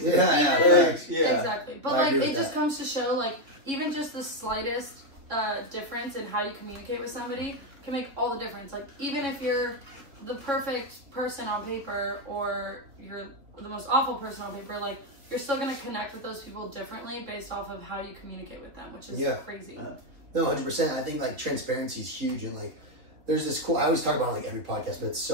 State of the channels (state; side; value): late; left; 3.3 ms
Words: to do. Exactly. But like, it just comes to show, like, even just the slightest difference in how you communicate with somebody can make all the difference. Like, even if you're the perfect person on paper or you're the most awful person on paper, like you're still going to connect with those people differently based off of how you communicate with them, which is crazy. No, 100%. I think like transparency is huge, and like there's this cool, I always talk about it, like every podcast, but it's